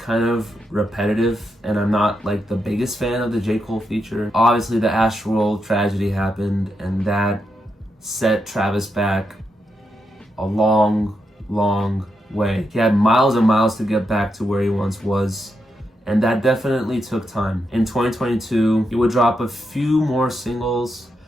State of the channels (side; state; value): both; normal; correlation 0.83